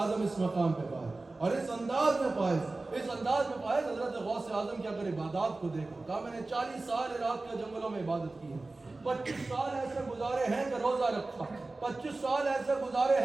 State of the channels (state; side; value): quieter; left; 3.2 dB